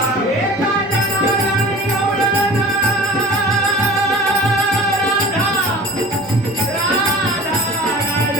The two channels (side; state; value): both; normal; correlation 0.41